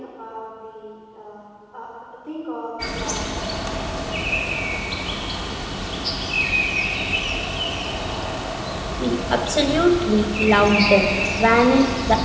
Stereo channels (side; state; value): both; identical; correlation 1.00